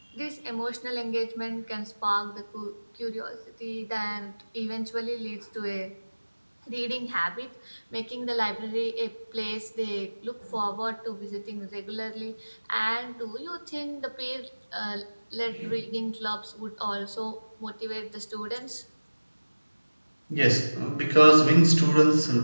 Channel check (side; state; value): both; inverted; correlation -1.00